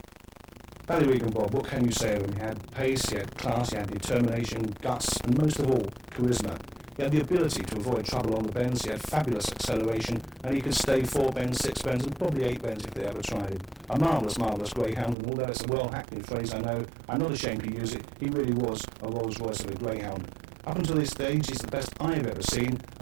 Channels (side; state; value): left; drops out; at 15.2 s